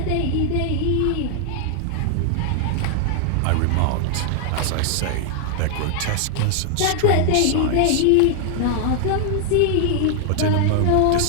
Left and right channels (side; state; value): both; different; correlation 0.00